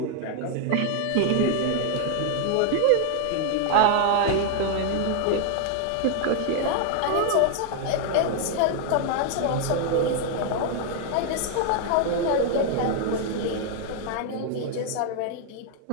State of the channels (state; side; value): different; both; correlation 0.00